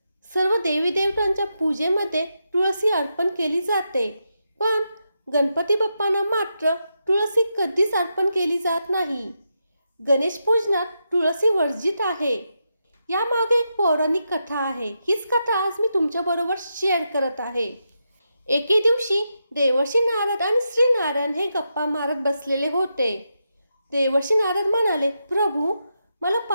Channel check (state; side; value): inverted; both; correlation -0.85